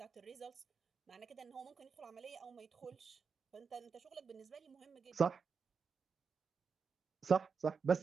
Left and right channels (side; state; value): left; quieter; 5.6 dB